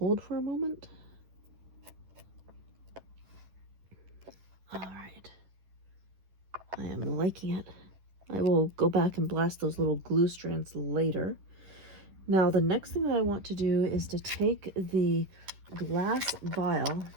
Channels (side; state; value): left; late; 11 ms